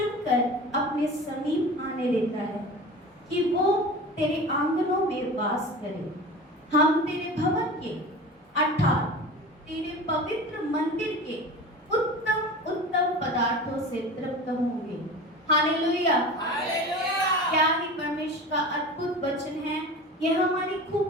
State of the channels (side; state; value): both; normal; correlation 0.34